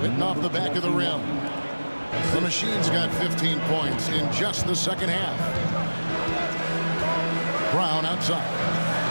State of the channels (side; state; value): both; inverted; correlation -1.00